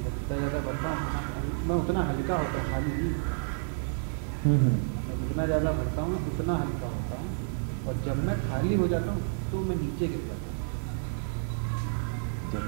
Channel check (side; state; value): left; silent; digital silence